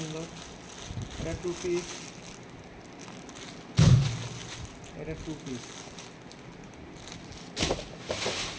এটা 2 পিস, এটা 2 পিস।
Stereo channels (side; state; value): both; identical; correlation 1.00